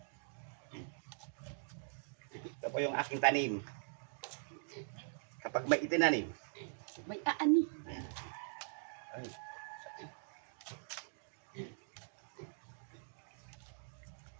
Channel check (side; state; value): left; silent; digital silence